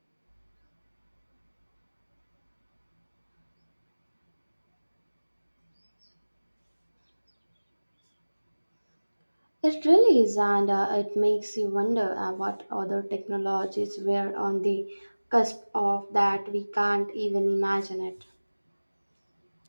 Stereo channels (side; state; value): both; inverted; correlation -1.00